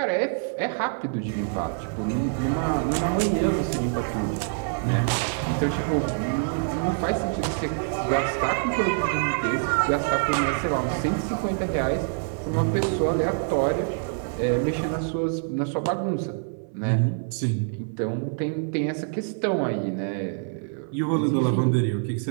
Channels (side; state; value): left; silent; 57 dB below the other